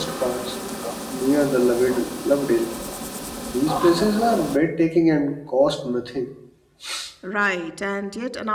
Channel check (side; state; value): both; identical; correlation 1.00